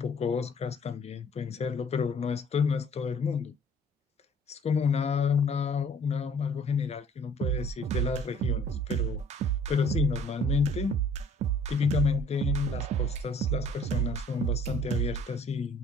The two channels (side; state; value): both; normal; correlation 0.55